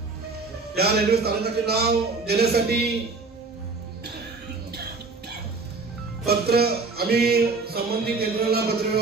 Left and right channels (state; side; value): quieter; left; 4.0 dB